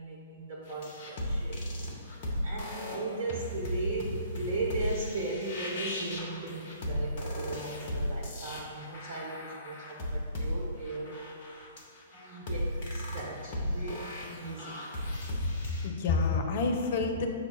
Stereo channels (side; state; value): both; inverted; correlation -0.51